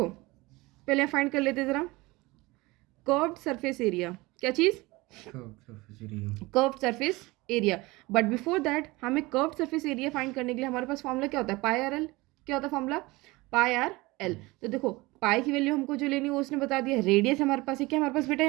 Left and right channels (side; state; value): left; quieter; 22.0 dB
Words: पहले फाइंड कर लेते ज़रा कर्व्ड सरफेस एरिया। क्या चीज़, curved surface area. But before that हमें कर्व्ड सरफेस एरिया फाइंड करने के लिए हमारे पास फॉर्मूला क्या होता है, पाई आर एल। क्या होता है फॉर्मूला, पाई आर एल। तो देखो पाई की वैल्यू हमको जो लेनी है वो उसने बता दिया। रेडियस हमारे पास है, क्या हमारे पास बेटा